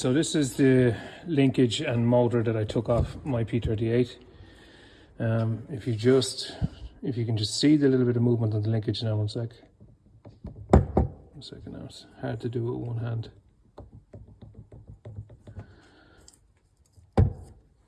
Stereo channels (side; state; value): both; identical; correlation 1.00